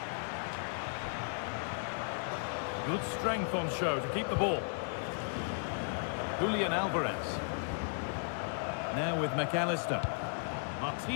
Good strength on show to keep the ball. Julian Alvarez. Now with McAllister.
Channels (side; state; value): right; silent; 54 dB below the other